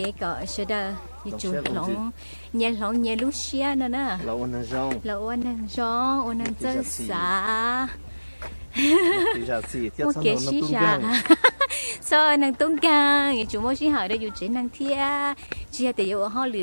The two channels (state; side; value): inverted; both; correlation -1.00